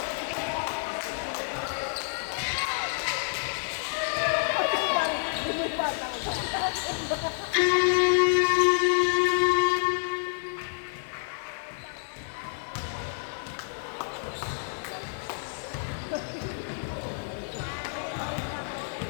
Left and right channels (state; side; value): silent; right; 59 dB below the other